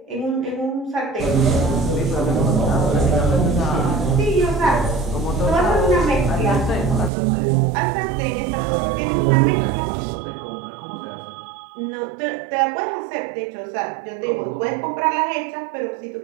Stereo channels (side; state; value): left; drops out; at 7.1 s